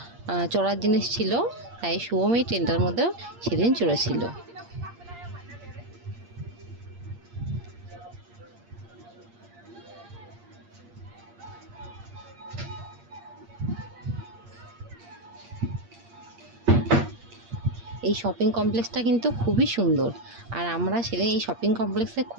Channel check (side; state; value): left; late; 8.6 ms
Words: চড়ার জিনিস ছিল, তাই শুভম এই ট্রেনটার মধ্যেও সেদিন চড়েছিল। এই শপিং কমপ্লেক্সটা কিন্তু খুবই সুন্দর, আর আমরা সেদিন এই শপিং কমপ্লেক্সে